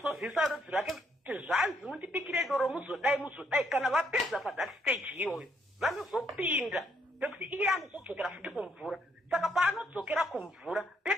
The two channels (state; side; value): normal; both; correlation 0.72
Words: rudzi rwake kuti zvanzi mundibikire doro muzodai kana vapedza pathat stage iyoyo vanozopinda pekuti iye anozodzokera futi kumvura. Saka paanodzokera kumvura